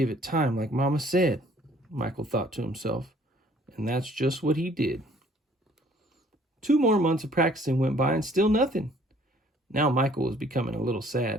it time like Mama said, Michael thought to himself. And that's just what he did. 2 more months of practicing went by and still nothing. Now Michael was becoming a little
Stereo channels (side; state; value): both; normal; correlation 0.58